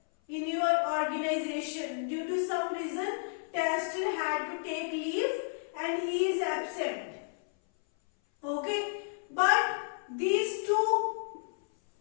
in your organization. Due to some reason, tester had to take leave and he is absent. Okay, but these two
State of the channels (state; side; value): silent; right; 57 dB below the other